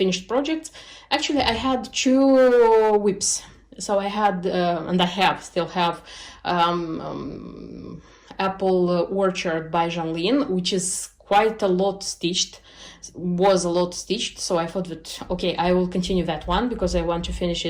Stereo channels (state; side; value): identical; both; correlation 1.00